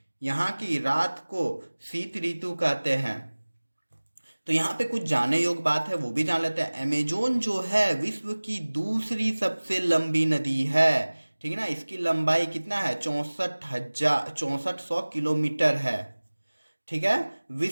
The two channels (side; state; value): both; inverted; correlation -1.00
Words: यहाँ की रात को शीत ऋतु कहते हैं। तो यहाँ पे कुछ जानने योग्य बात है, वो भी जान लेते हैं। अमेजोन जो है विश्व की दूसरी सबसे लंबी नदी है, ठीक है ना। इसकी लंबाई कितना है? 6400 किलोमीटर है, ठीक है।